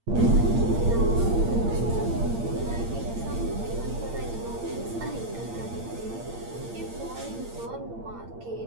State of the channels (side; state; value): left; late; 8.7 ms